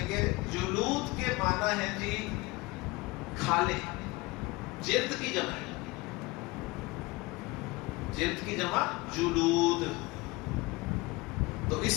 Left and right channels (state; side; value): quieter; right; 23.0 dB